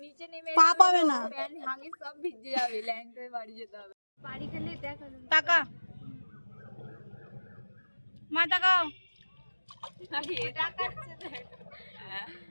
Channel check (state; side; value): inverted; both; correlation -1.00